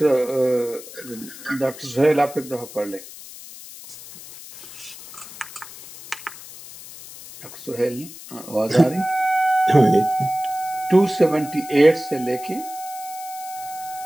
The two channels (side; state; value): left; noise; hiss, 16 dB below the sound